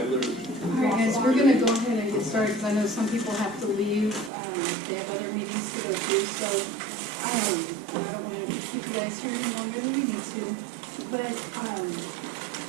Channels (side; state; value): left; drops out; at 4.3 s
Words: All right, guys, we're gonna go ahead and get started, because I know some people have to leave, they have other meetings to go to, so, and I don't wanna keep you guys here any longer than you need to. But,